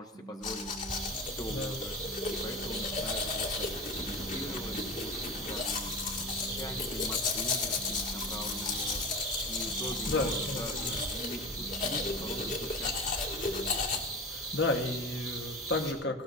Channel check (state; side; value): normal; both; correlation 0.31